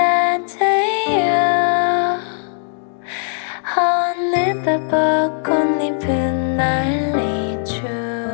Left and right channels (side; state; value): right; silent; digital silence